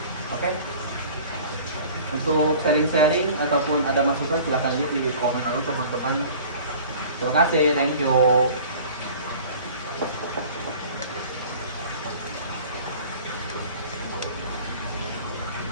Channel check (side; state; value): both; inverted; correlation -0.44